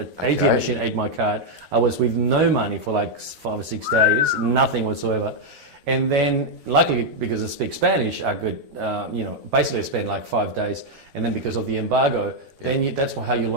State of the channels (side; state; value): left; late; 13 ms